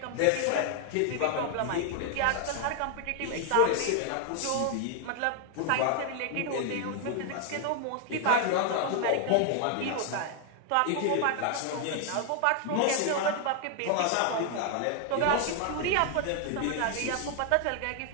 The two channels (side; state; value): both; different; correlation 0.00